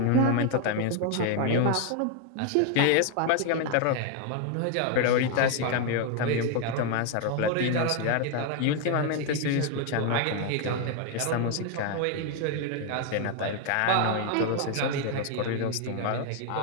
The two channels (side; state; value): both; different; correlation 0.01